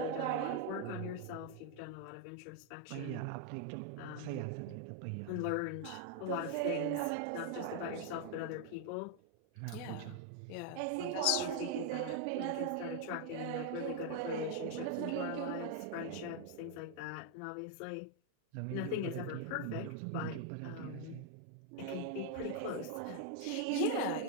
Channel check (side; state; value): both; different; correlation 0.00